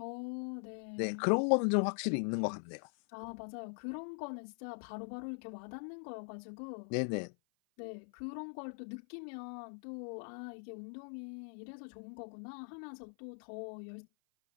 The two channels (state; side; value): silent; right; 50 dB below the other